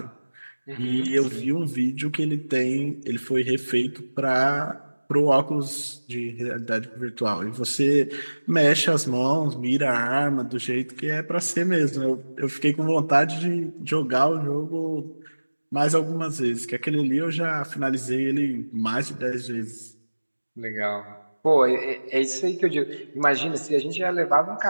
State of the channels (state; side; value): inverted; both; correlation -1.00